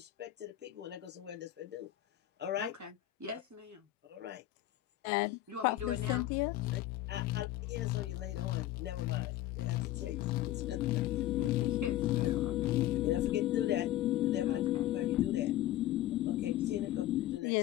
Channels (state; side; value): quieter; right; 14.2 dB